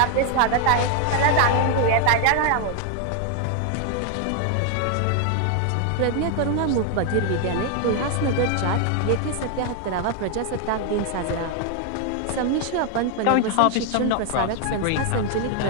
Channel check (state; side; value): different; both; correlation 0.00